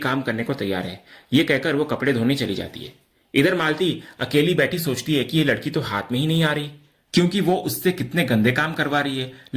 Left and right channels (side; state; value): both; identical; correlation 1.00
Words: करने को तैयार है। ये कहकर वो कपड़े धोने चली जाती है। इधर मालती अकेली बैठी सोचती है कि ये लड़की तो हाथ में ही नहीं आ रही, क्योंकि वो उससे कितने गंदे काम करवा रही है,